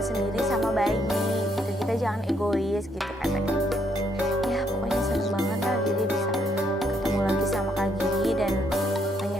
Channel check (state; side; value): normal; both; correlation 0.73